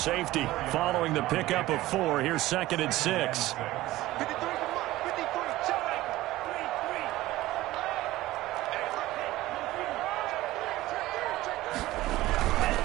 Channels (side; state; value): left; quieter; 16.9 dB